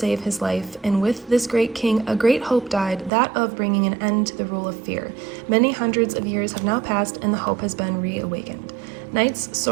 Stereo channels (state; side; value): drops out; left; at 3.1 s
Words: his life, and with this great king, a great hope died, that of bringing an end to the rule of fear. Many hundreds of years have now passed, and the hope has been reawakened. Knights,